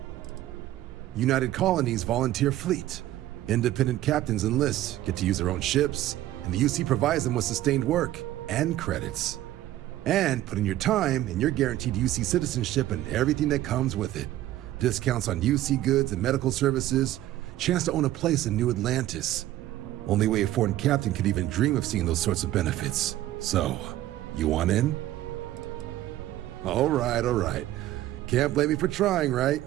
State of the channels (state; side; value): quieter; left; 14.3 dB